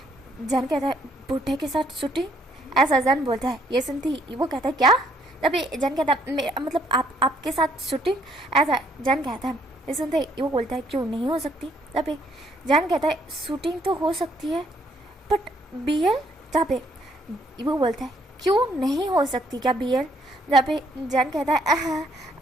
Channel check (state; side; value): normal; both; correlation 0.68